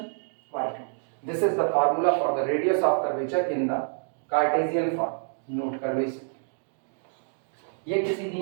y2। This is the formula for the radius of curvature in the Cartesian form. Note कर लो इसे, ये किसी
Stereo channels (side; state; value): left; silent; digital silence